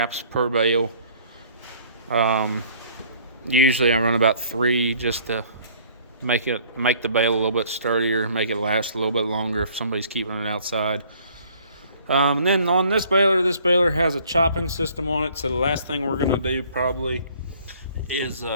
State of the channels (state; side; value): inverted; both; correlation -0.57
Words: per bale. Usually I run about 3 just to make the bale a little bit sturdier, make it last a little bit longer if somebody's keeping it outside. And then on this baler has a chopping system on it. So the last thing we're gonna do probably is